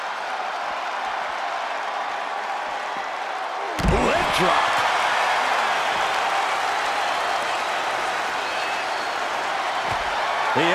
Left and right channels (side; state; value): both; identical; correlation 1.00